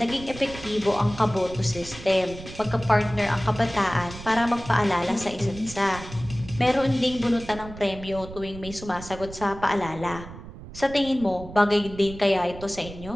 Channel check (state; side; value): noise; right; rumble, 14 dB below the sound